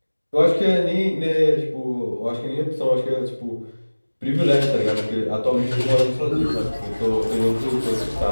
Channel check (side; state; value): both; inverted; correlation -1.00